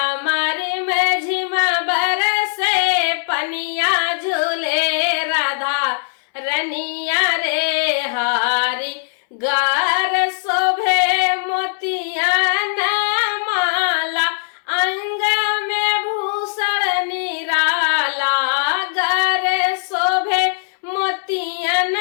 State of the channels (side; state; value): right; silent; 66 dB below the other